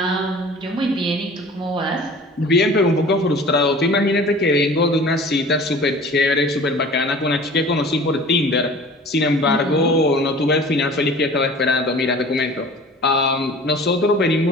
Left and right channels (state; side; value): normal; both; correlation 0.43